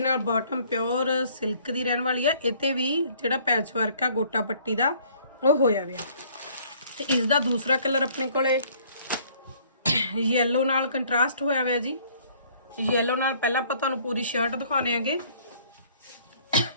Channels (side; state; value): both; inverted; correlation -0.58